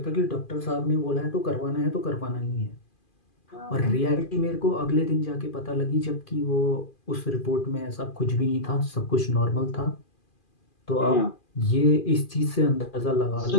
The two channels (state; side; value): late; right; 2.4 ms